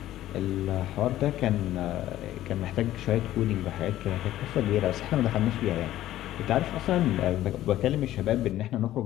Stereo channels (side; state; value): right; quieter; 13.8 dB